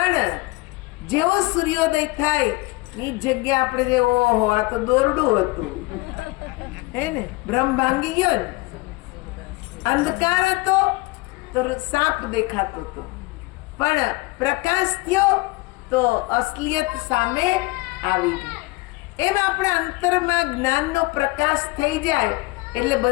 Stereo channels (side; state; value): right; quieter; 23.1 dB